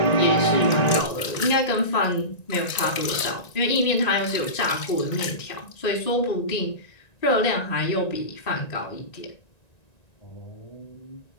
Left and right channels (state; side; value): late; right; 1.9 ms